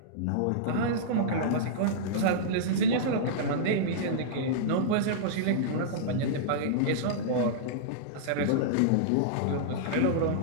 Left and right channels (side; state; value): both; different; correlation -0.03